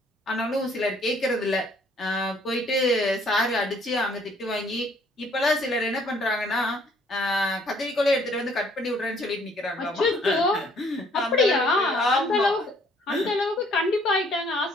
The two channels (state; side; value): normal; both; correlation 0.62